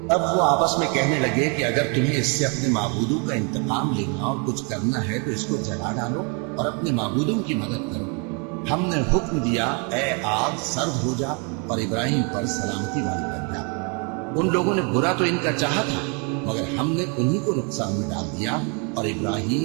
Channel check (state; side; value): quieter; left; 35.3 dB